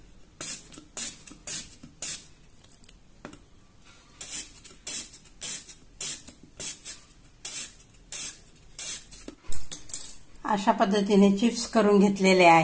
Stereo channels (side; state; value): both; identical; correlation 1.00